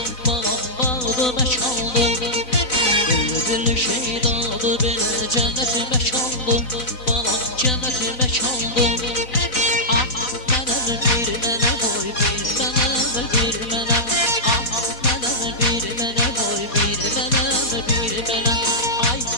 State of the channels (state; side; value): late; right; 4.0 ms